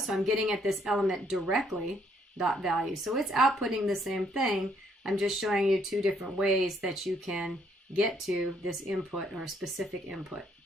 I'm getting at this element directly, dot value. So it's outputting the same thing. I'm just showing you 2 different ways that you can get to this input or specific input.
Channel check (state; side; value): normal; both; correlation 0.69